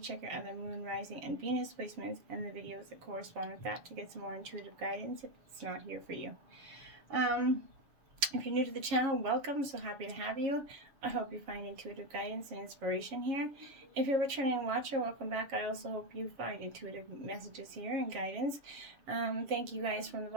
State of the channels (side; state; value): left; late; 7.4 ms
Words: your other Moon, Rising, and Venus placements and the videos that correspond with that to get some more intuitive guidance if it's not here for you. If you're new to the channel, welcome. So happy to have you. I hope you find intuitive guidance and inspiration here. If you're a returning watcher, welcome back. I also hope you find intuitive messages here and guidance. Thank you guys from the